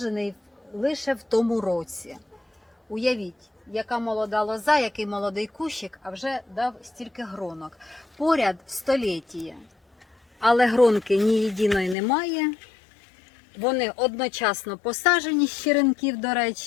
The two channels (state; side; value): drops out; right; at 12.0 s